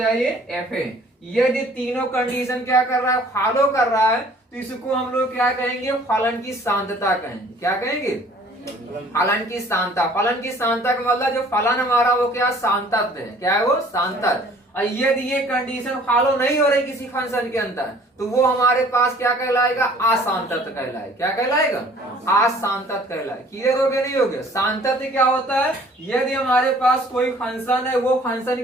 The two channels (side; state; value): both; normal; correlation 0.54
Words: ये एफ ए। यदि तीनों कंडीशन क्या कर रहा है? फॉलो कर रहा है तो इसको हम लोग क्या कहेंगे? फलन की सांतता कहेंगे। क्या कहेंगे? फलन की सांतता। फलन की सांतता का मतलब जो फलन हमारा वो क्या? सांतत है। क्या है वो? सांतत। और यदि ये कंडीशन फॉलो नहीं हो रही किसी फंक्शन के अंदर तो वो हमारे पास क्या कहलाएगा? असांतत कहलाएगा। क्या कहलाएगा? असांतत कहलाएगा। क्लियर हो गया? नहीं हो गया? सांतत क्या होता है? यदि हमारे पास कोई फंक्शन है, वो फंक्शन